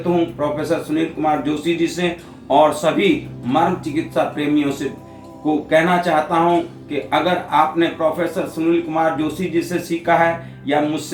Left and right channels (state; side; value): identical; both; correlation 1.00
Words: हूँ प्रोफेसर सुनील कुमार जोशी जी से और सभी मर्म चिकित्सा प्रेमियों से को कहना चाहता हूं कि अगर आपने प्रोफेसर सुनील कुमार जोशी जी से सीखा है या